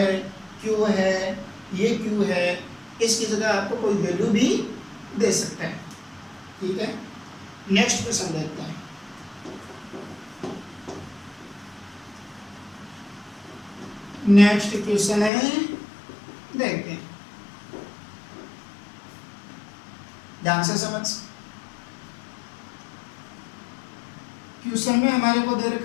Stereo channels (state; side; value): drops out; right; at 15.3 s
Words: q है, ये q है, इसकी जगह आपको कोई वैल्यू भी दे सकता है। ठीक है, नेक्स्ट क्वेश्चन देखते हैं। नेक्स्ट क्वेश्चन है, देखते हैं, ध्यान से समझ। क्वेश्चन में हमारे को दे